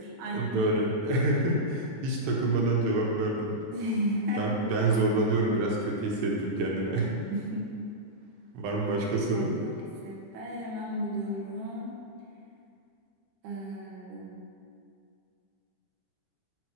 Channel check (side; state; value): both; normal; correlation -0.11